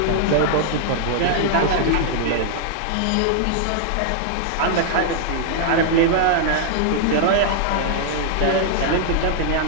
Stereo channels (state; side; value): different; both; correlation -0.01